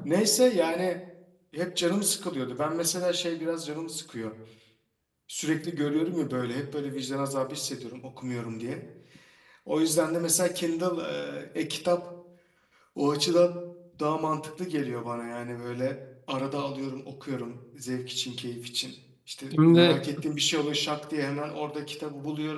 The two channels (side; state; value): both; identical; correlation 1.00